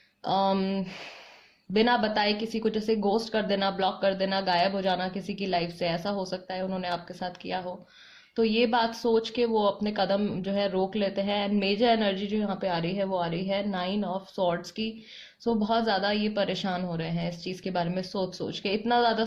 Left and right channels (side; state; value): both; identical; correlation 1.00